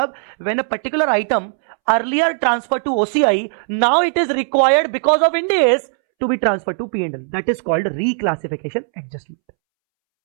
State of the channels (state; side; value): silent; left; 67 dB below the other